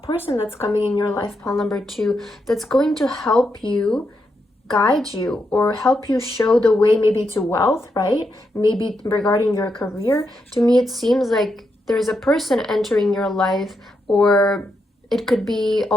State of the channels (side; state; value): both; normal; correlation 0.83